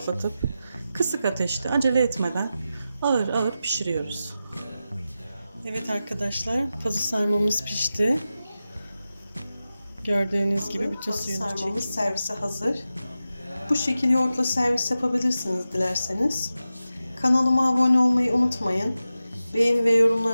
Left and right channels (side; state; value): both; inverted; correlation -0.92